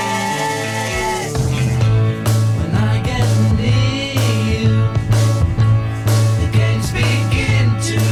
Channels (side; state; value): both; identical; correlation 1.00